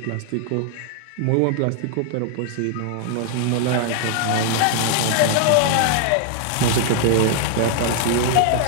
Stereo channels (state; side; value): different; both; correlation 0.00